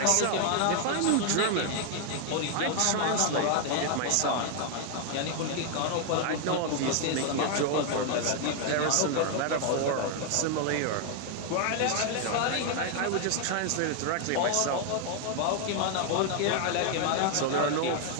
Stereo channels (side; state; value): both; different; correlation 0.00